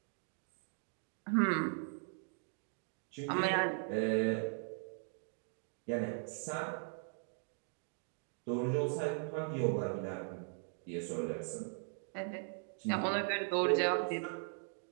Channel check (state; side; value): silent; left; 52 dB below the other